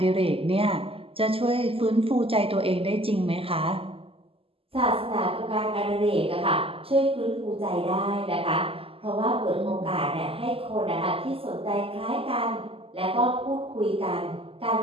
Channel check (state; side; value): late; left; 0.27 ms